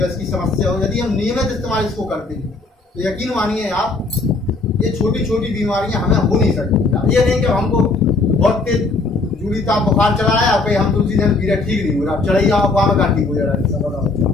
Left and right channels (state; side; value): quieter; right; 3.6 dB